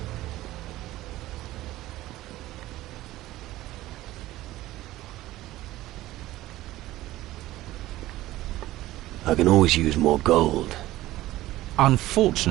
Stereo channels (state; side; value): quieter; left; 16.2 dB